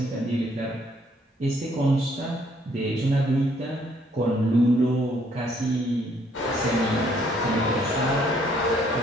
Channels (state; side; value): normal; both; correlation 0.66